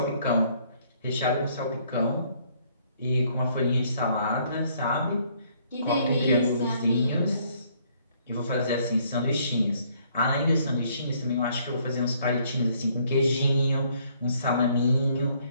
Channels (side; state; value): both; inverted; correlation -0.65